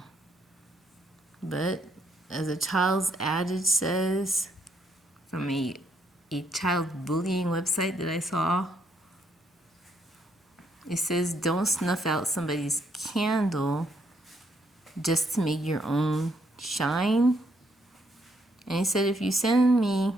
But as a child's adage says, from a child bullying website that I saw, it says, don't snuff out somebody's candle just to make your own shine. And he said, if you send me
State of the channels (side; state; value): both; normal; correlation 0.73